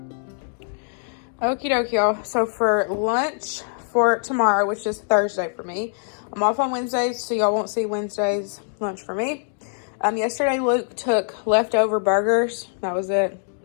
Okie dokie, y'all. So for lunch for tomorrow, which is Thursday for me, I'm off on Wednesdays, so y'all won't see Wednesday's lunch for me. Yesterday, Luke took leftover burgers. That was it.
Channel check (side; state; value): right; silent; digital silence